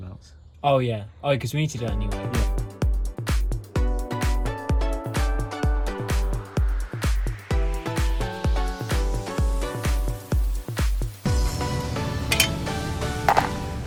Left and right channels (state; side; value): identical; both; correlation 1.00